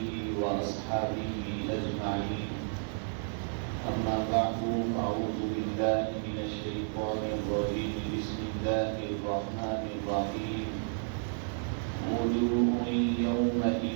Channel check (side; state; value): left; silent; digital silence